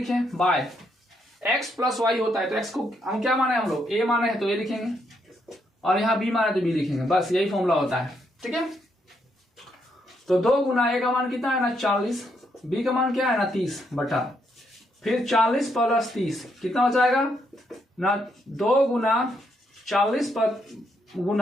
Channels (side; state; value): both; normal; correlation 0.76